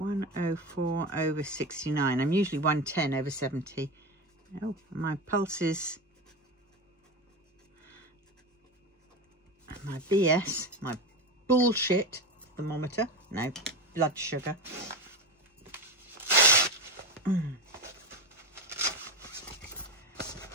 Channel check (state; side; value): normal; both; correlation 0.19